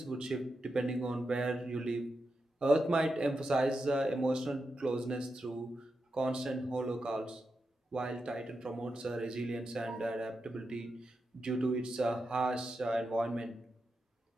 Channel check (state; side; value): normal; both; correlation 0.88